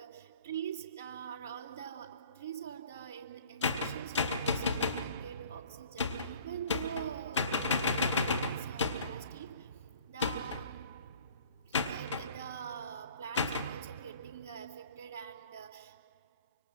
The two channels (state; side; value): inverted; both; correlation -0.50